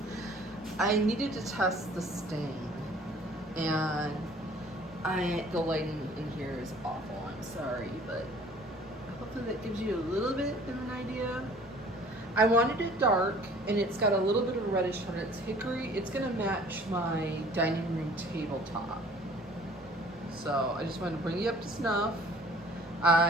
needed to test the stain, and the lighting in here is awful. I'm sorry, but hopefully that gives you a little bit of an idea. I wanted it dark, and it's got a little bit of a reddish tone. It's hickory. It's gonna match my dining room tabletop. So I just wanted to bring you up to snuff.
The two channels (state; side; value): normal; both; correlation 0.52